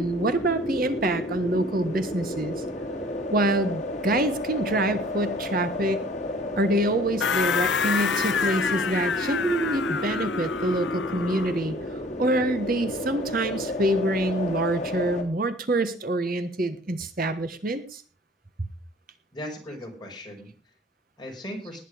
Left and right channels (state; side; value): normal; both; correlation 0.52